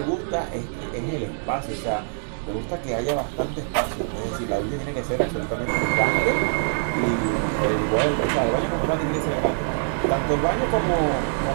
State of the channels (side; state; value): left; silent; digital silence